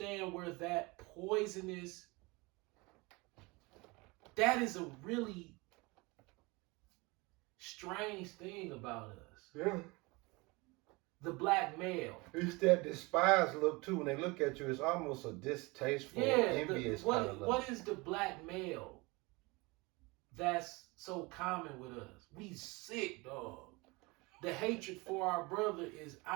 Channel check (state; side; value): quieter; left; 25.1 dB